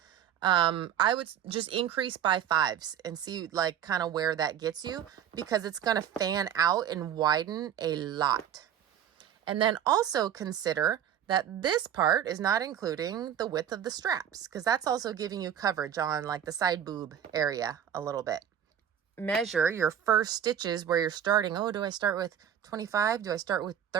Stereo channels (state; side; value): quieter; left; 9.6 dB